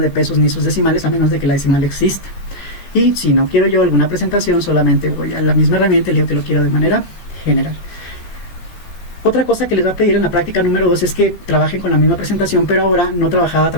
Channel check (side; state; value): right; late; 16 ms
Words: pesos ni sus decimales a menos de que la decimal existe. Y si no quiero yo alguna presentación, solamente voy a la misma herramienta y le digo que lo quiero de manera general. Otra cosa que les va a pedir en la práctica número 2 es que trabajen con la misma presentación, pero ahora no trabajada a